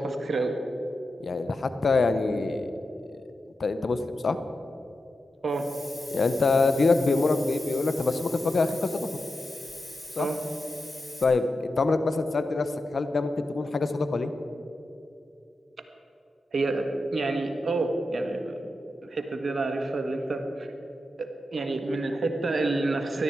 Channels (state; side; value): normal; both; correlation 0.89